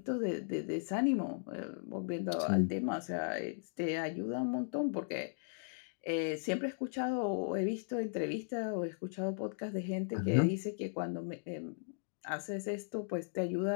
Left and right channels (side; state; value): right; silent; digital silence